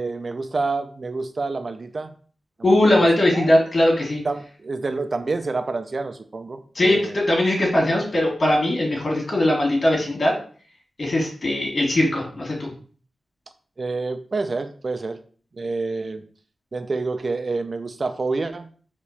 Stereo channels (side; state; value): both; normal; correlation 0.93